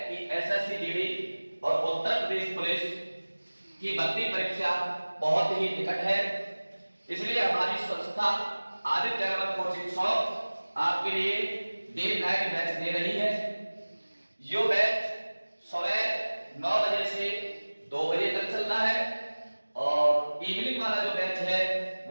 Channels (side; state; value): both; inverted; correlation -1.00